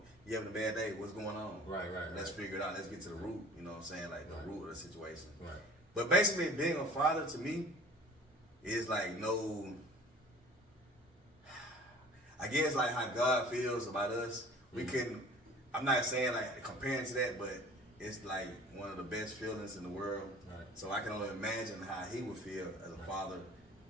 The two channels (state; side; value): normal; both; correlation 0.47